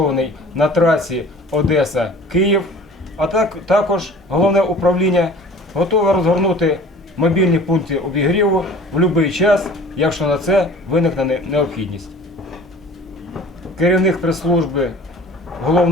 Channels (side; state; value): both; normal; correlation 0.45